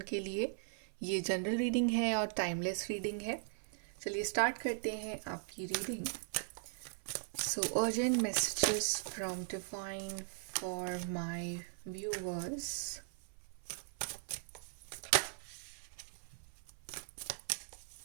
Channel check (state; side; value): silent; left; 52 dB below the other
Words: के लिए। ये जनरल रीडिंग है और टाइमलेस रीडिंग है। चलिए स्टार्ट करते हैं आपकी reading. So urgent messages from divine for my viewers.